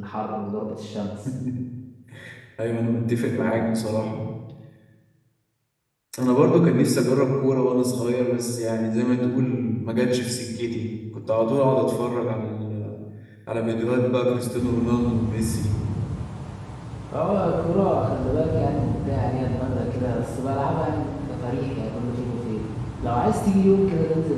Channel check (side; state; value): both; identical; correlation 1.00